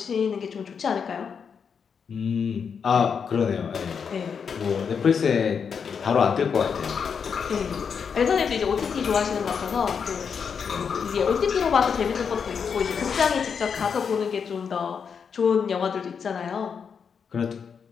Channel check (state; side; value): quieter; right; 6.5 dB